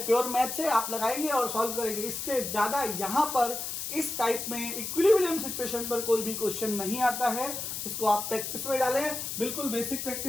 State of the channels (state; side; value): noise; left; hiss, 5 dB below the sound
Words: प्योर मैथ से आप लगाएंगे और सॉल्व करेंगे। इससे ज्यादा यहां पर इस टाइप में इक्विलिब्रियम सिचुएशन पर कोई भी क्वेश्चन नहीं आता है। इसको आप प्रैक्टिस में डालें, बिल्कुल बेसिक